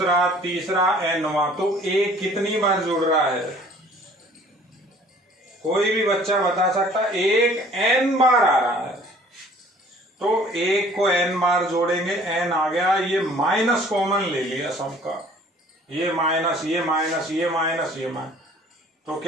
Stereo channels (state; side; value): normal; both; correlation 0.53